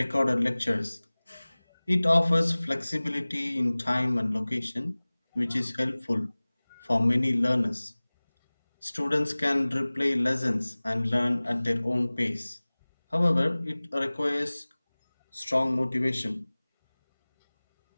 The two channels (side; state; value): both; inverted; correlation -1.00